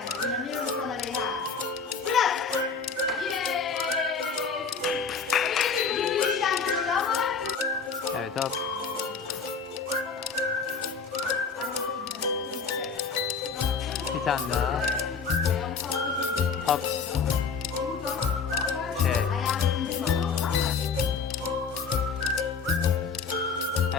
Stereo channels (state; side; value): quieter; right; 5.3 dB